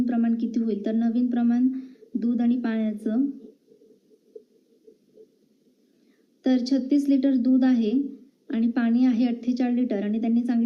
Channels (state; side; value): identical; both; correlation 1.00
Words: प्रमाण किती होईल. तर नवीन प्रमाण दूध आणि पाण्याचं, तर 36 लिटर दूध आहे आणि पाणी आहे 48 लिटर आणि त्यांनी